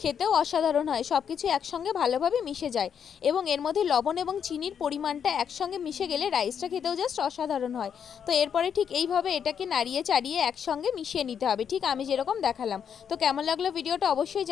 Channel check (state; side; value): quieter; right; 7.8 dB